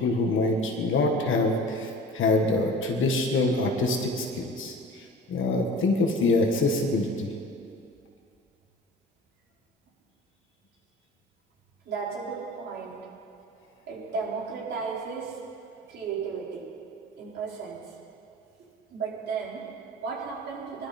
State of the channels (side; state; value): both; normal; correlation 0.40